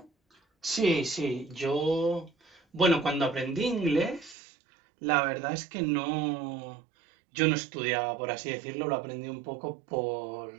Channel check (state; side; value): drops out; left; at 4.4 s